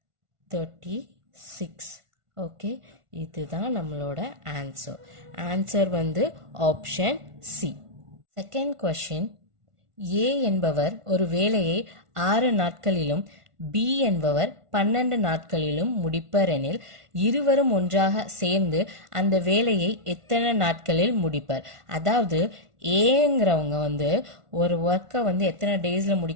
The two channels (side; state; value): left; late; 1.5 ms